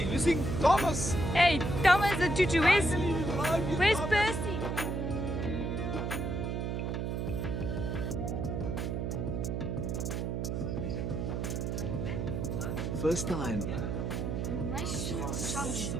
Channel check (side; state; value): right; noise; hum, 1 dB below the sound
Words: Thomas. Hey, Thomas the tutu, where's Percy? First time